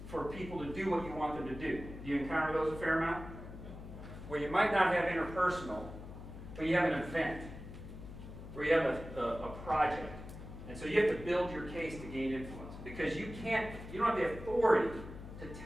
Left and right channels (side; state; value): left; noise; hum, 12 dB below the sound